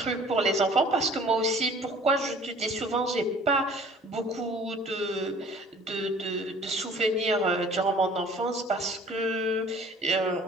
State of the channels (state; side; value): normal; both; correlation 0.51